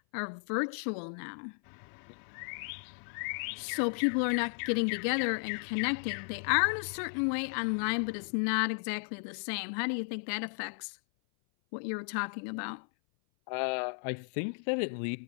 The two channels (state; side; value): silent; right; 55 dB below the other